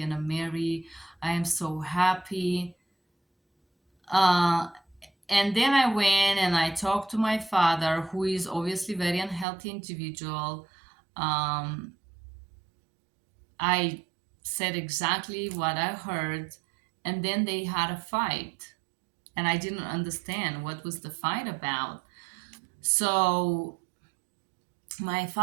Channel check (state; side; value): drops out; left; at 9.5 s